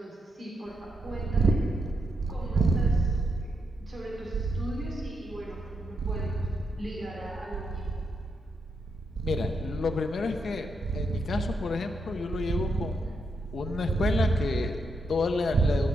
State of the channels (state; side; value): normal; both; correlation 0.81